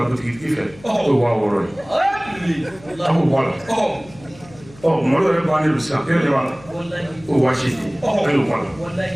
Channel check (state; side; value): noise; left; hum, 22 dB below the sound